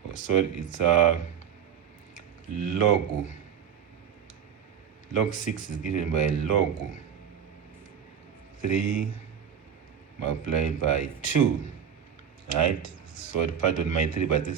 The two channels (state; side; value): quieter; left; 8.2 dB